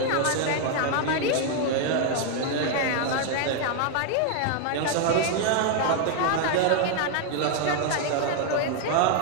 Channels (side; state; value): both; different; correlation 0.00